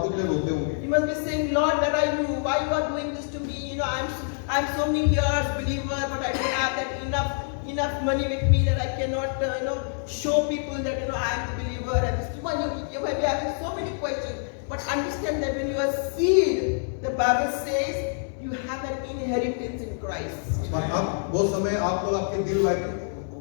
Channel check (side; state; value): right; silent; digital silence